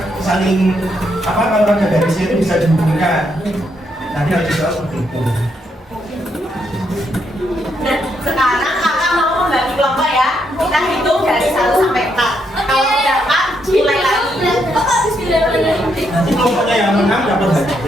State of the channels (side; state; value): both; normal; correlation 0.77